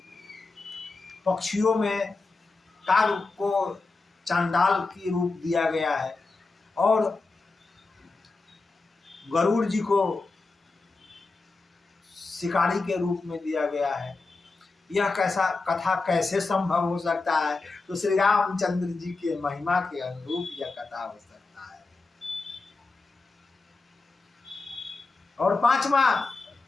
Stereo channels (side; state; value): right; quieter; 3.7 dB